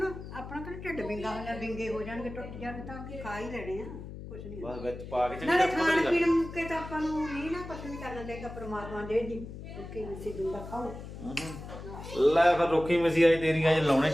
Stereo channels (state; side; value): noise; left; hum, 11 dB below the sound